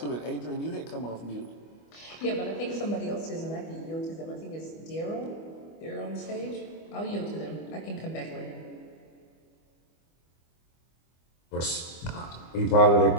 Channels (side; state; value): right; late; 25 ms